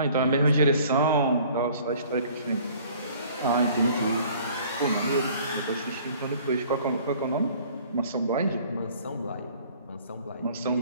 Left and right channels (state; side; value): inverted; both; correlation -0.53